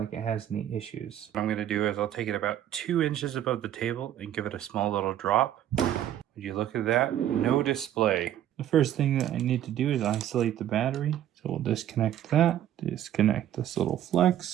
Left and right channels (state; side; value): quieter; left; 11.4 dB